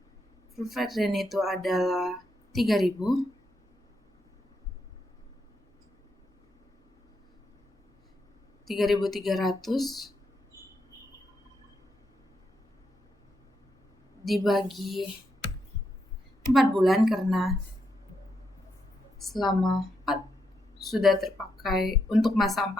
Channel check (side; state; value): both; normal; correlation 0.81